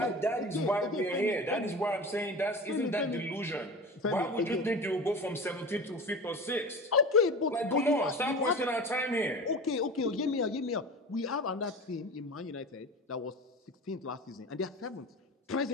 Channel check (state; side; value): normal; both; correlation 0.32